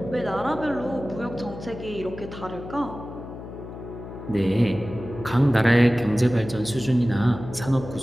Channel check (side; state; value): left; noise; hum, 12 dB below the sound